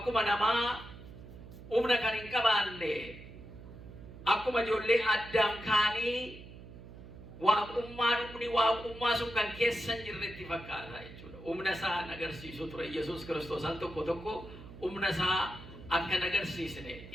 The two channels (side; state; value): right; noise; hum, 15 dB below the sound